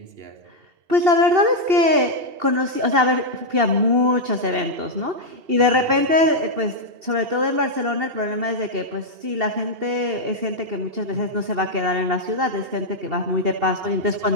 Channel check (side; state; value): left; late; 2.7 ms